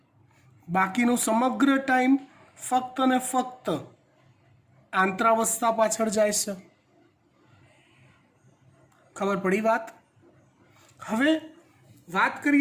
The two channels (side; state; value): both; identical; correlation 1.00